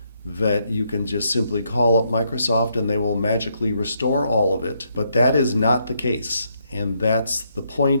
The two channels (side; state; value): both; inverted; correlation -0.76